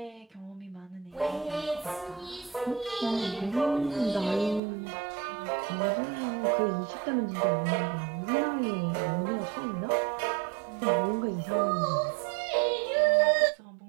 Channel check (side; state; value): left; drops out; at 4.6 s